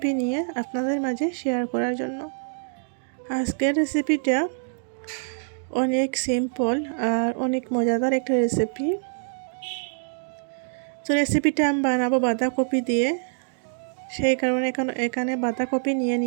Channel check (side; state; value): left; silent; digital silence